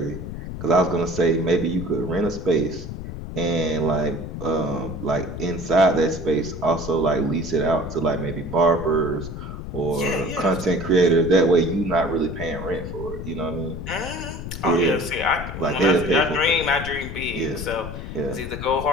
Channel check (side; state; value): left; noise; rumble, 8 dB below the sound